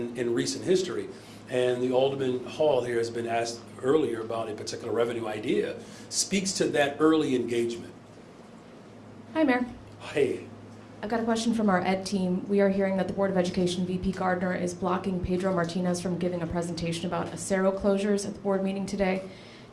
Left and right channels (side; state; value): both; identical; correlation 1.00